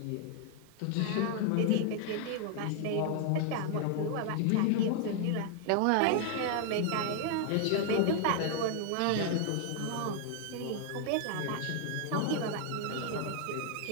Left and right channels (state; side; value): different; both; correlation 0.00